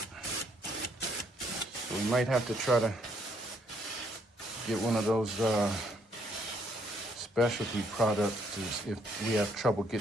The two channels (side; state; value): both; normal; correlation 0.69